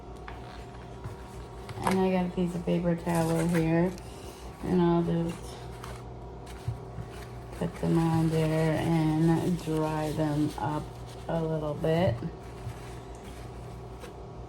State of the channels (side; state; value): both; identical; correlation 1.00